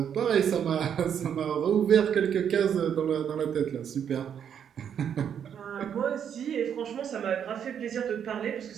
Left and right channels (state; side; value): quieter; left; 8.4 dB